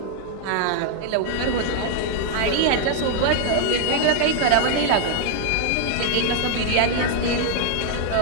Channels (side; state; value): both; different; correlation 0.00